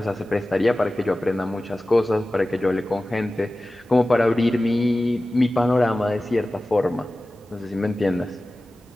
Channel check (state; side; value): normal; both; correlation 0.96